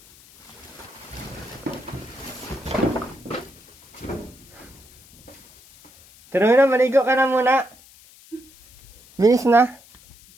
Pero na, maligo ka na muna. Bilis na.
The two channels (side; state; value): left; noise; hiss, 24 dB below the sound